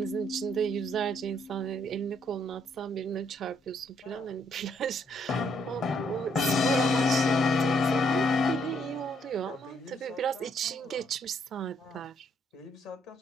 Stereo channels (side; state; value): both; normal; correlation 0.70